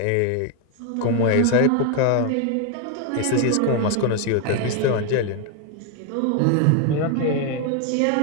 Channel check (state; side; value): different; both; correlation 0.01